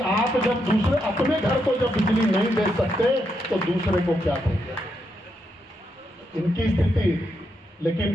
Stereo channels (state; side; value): normal; both; correlation 0.81